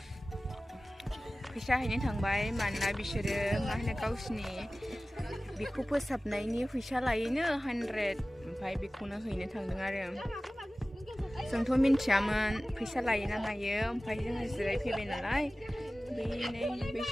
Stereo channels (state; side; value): normal; both; correlation 0.97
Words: फैसा हैनो थांबाय मानोना बिसोरो मा होनो गावसिनि बेखौ फोसाबनायनि फैसा लायोनो 100 ओमफ्राय बेखौनो हैनो थांदों आरो जोंथ' मिन्थियामोन फैसा लायो ना मायो ओमफ्राय जोङो जिरायफैबाय नालाय बै नै